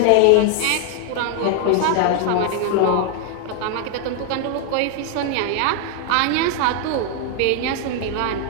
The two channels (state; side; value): different; both; correlation 0.00